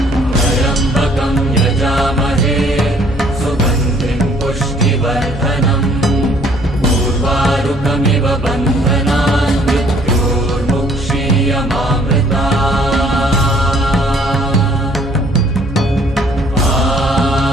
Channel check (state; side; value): normal; both; correlation 0.60